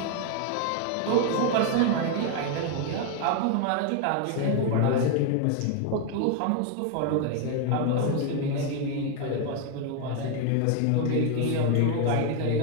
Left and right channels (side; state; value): both; different; correlation 0.01